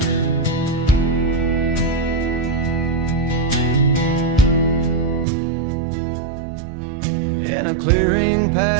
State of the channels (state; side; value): drops out; left; at 5.2 s